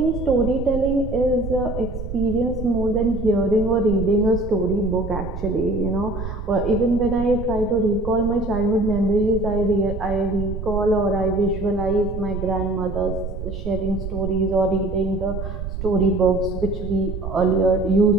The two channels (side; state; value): right; noise; rumble, 7 dB below the sound